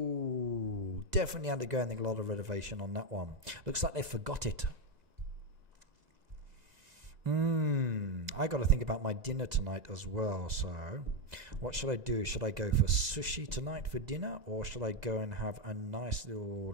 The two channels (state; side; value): late; left; 2.0 ms